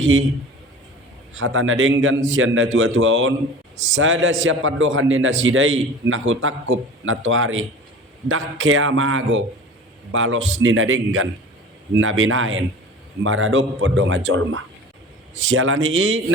hatana denggan sianda tua-tuaon sada siapa dohan nina sidai nahu takup natuari dakke amago balos nina denggan nabinaen maradop podonga jolma sialani i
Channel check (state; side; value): normal; both; correlation 0.39